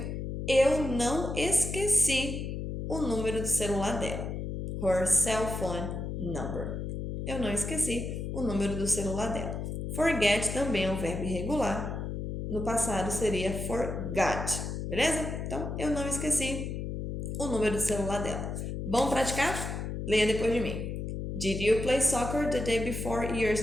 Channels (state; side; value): noise; left; hum, 4 dB below the sound